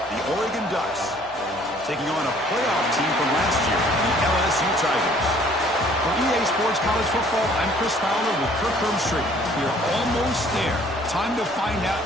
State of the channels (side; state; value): both; normal; correlation 0.58